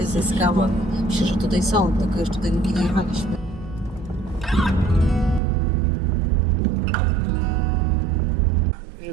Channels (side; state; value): left; drops out; at 5.4 s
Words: ze skałą. Myślę, że tutaj są, tylko jeszcze tutaj nie jechaliśmy.